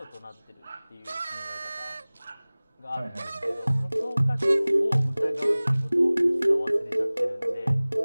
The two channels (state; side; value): inverted; both; correlation -1.00